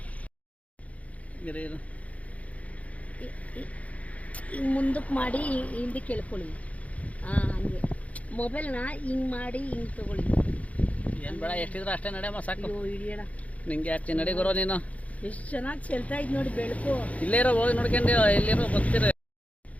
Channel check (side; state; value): right; late; 0.068 ms